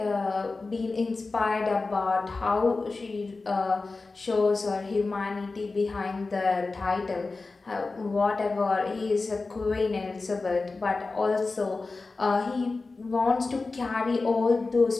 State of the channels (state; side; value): quieter; right; 3.7 dB